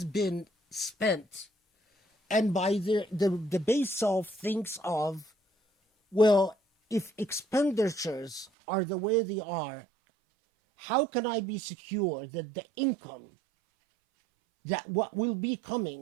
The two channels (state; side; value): drops out; left; at 8.5 s